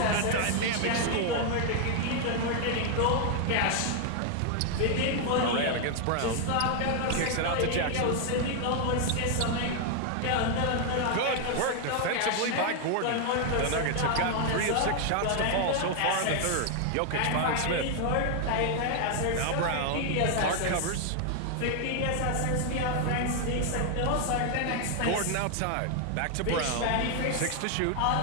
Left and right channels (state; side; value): different; both; correlation 0.00